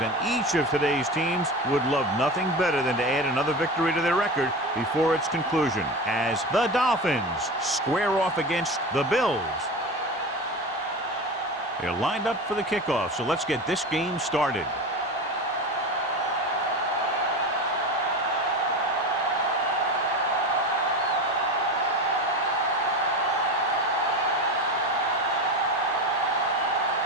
and each of today's teams would love nothing better than to add another victory to their record before its conclusion, as the Dolphins square off against the Bills. They're lined up for the kickoff, so let's get this game started.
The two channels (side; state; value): both; normal; correlation 0.26